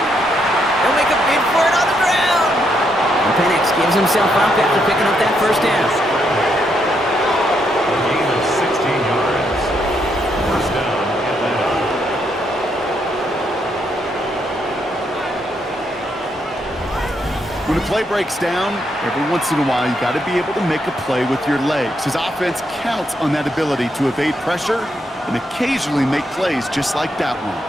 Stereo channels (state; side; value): normal; both; correlation 0.77